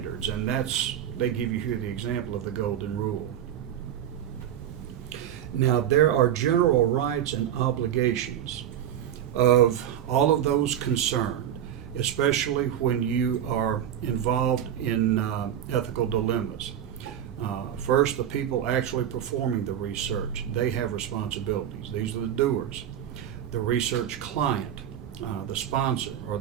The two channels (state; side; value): quieter; left; 10.3 dB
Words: and they give you here the example of the golden rule. Now, there are general rights and obligations of all of those concerned, especially when you are involved in ethical dilemmas. First, the people actually performing the research, they have responsibilities. These are the doers. The research client, the sponsor, or